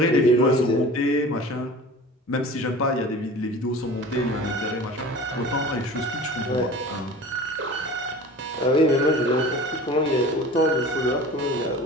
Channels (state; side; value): normal; both; correlation 0.40